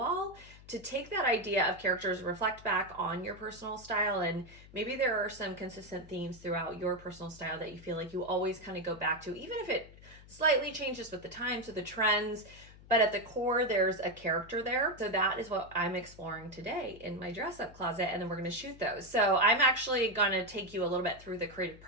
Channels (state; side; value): noise; left; hum, 20 dB below the sound